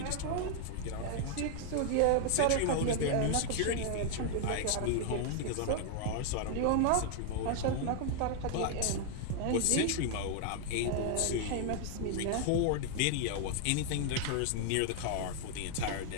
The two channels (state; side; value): different; both; correlation 0.00